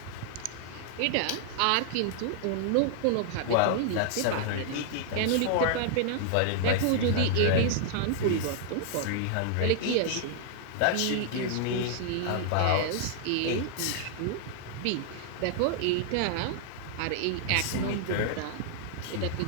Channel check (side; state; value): both; different; correlation -0.01